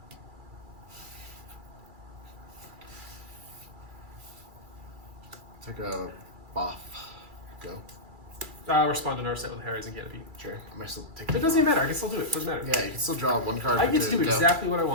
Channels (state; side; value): late; left; 2.3 ms